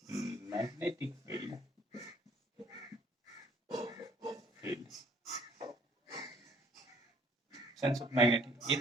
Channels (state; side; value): normal; both; correlation 0.59